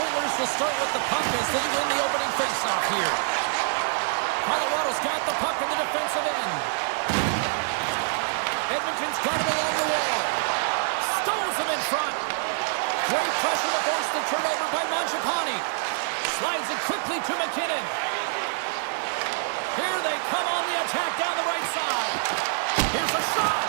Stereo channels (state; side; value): silent; left; 61 dB below the other